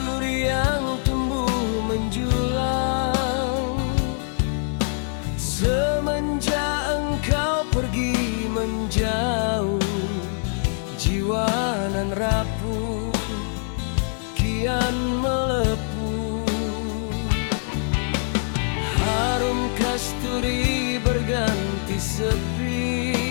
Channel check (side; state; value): right; silent; 60 dB below the other